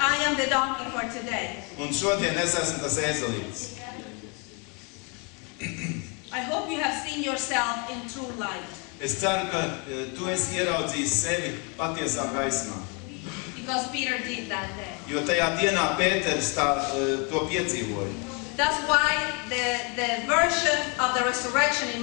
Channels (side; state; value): right; quieter; 32.4 dB